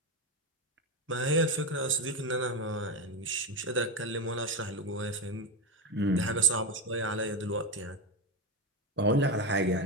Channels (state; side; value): normal; both; correlation 0.10